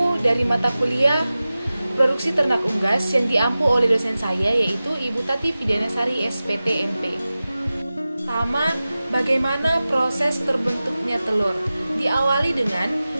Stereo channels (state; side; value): inverted; both; correlation -0.96